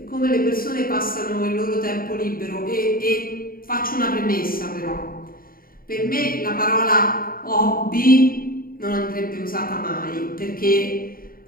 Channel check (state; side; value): late; right; 0.42 ms